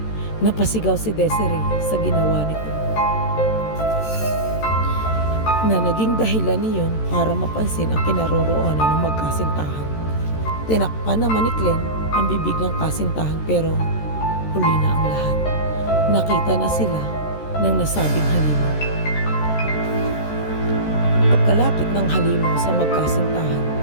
Napasigaw si Desiree sa ginawa nito, na naging dahilan niyon para mapansin ang kinaroroonan ng magkasintahan. Tinakpan naman ni Glenn ang bibig ng kasintahan pero huli na ang lahat. Nakita na sila ng nasabing halimaw. Pagkalapit ng halimaw sa magkasintahan,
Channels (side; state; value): right; late; 14 ms